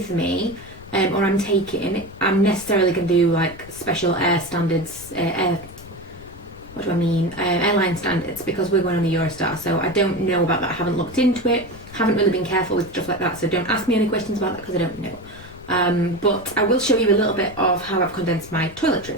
me or I'm taking, I'm necessarily going to do like special air standards, airline standards, because we're going on the Eurostar, so I don't know about that. I haven't looked into it, haven't really been careful with stuff like that, so don't ask me any questions about that because I don't know. But I will show you a little bit of how I've condensed my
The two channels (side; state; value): left; noise; rumble, 19 dB below the sound